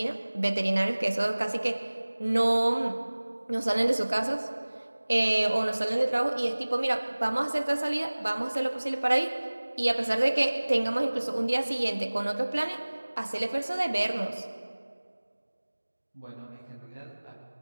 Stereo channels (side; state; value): both; inverted; correlation -1.00